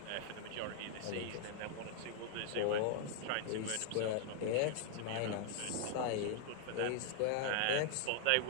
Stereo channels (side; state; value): both; different; correlation 0.00